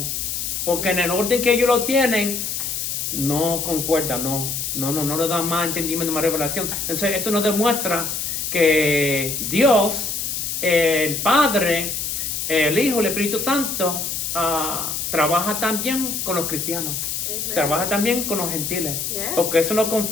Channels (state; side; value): noise; left; hiss, 3 dB below the sound